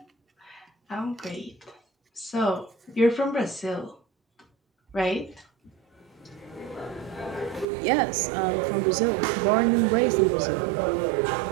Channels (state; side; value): drops out; left; at 7.7 s